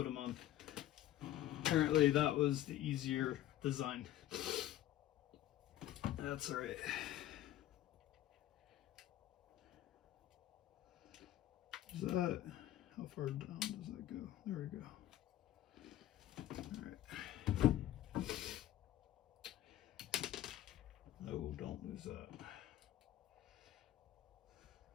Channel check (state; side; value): quieter; right; 13.3 dB